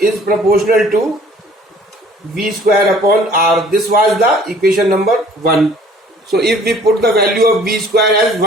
proportional to v square upon r. This was the equation number 1. So if we put the value of v square as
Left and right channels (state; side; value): normal; both; correlation 0.54